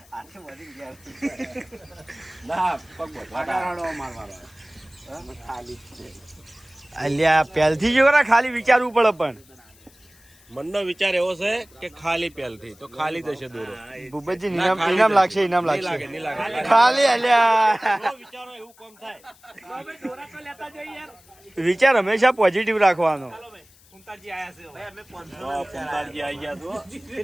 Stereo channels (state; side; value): noise; left; hiss, 27 dB below the sound